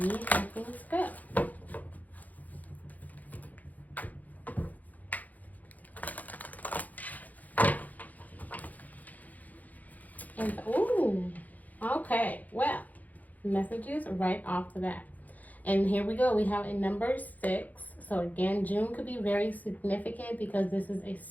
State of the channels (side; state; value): right; late; 0.079 ms